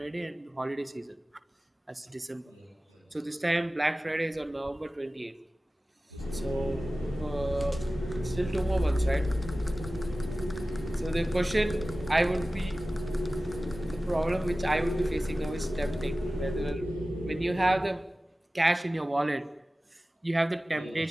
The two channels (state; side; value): normal; both; correlation 0.96